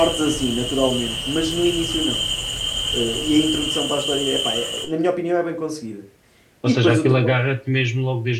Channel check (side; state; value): both; identical; correlation 1.00